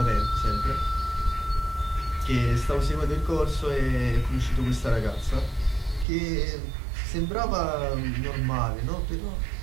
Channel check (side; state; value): left; drops out; at 6.1 s